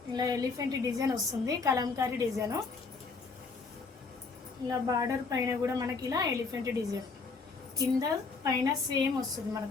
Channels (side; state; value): right; quieter; 4.4 dB